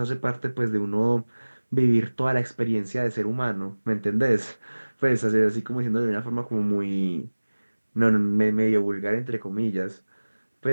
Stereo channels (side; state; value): both; inverted; correlation -1.00